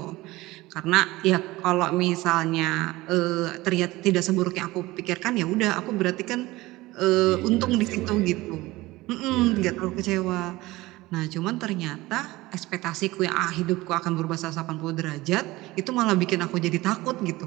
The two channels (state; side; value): quieter; left; 19.4 dB